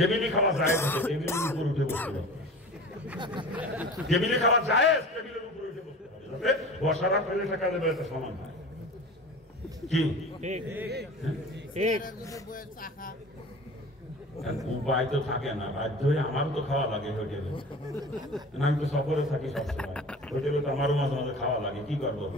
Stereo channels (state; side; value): normal; both; correlation 0.37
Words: খাওয়া যায়, টেবিলের উপর উঠে বসতে হবে। টেবিলে খাওয়া যায়, টেবিলের উপর উঠে বসতে হবে, যাতে বসার আর প্লেট রাখার লেভেলটা সমান হয়। কি উপায় তো থাকে না, বাধ্য হয়ে আমারও তো খাওয়া লাগে হোটেলে। আমি তো সফরে থাকি সবসময়, হোটেলে তো আমারও মাঝে মাঝে খাওয়া লাগে। কি করবো